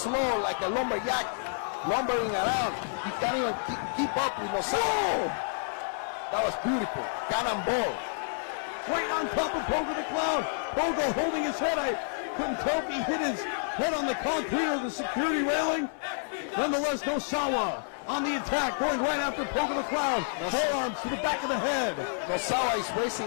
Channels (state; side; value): silent; right; digital silence